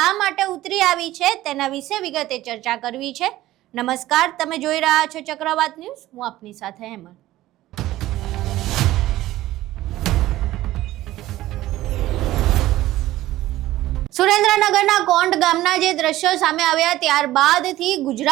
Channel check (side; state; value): left; quieter; 15.6 dB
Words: માટે ઉતરી આવી છે તેના વિશે વિગતે ચર્ચા કરવી છે. નમસ્કાર, તમે જોઈ રહ્યા છો ચક્રવાત ન્યૂઝ. હું આપની સાથે હેમંત. સુરેન્દ્રનગરના કોંડ ગામના જે દ્રશ્યો સામે આવ્યા ત્યારબાદથી